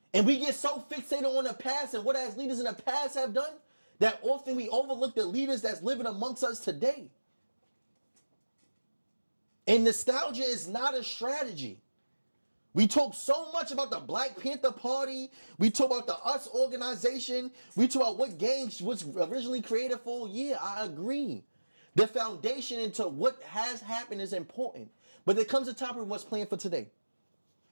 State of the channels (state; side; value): inverted; both; correlation -1.00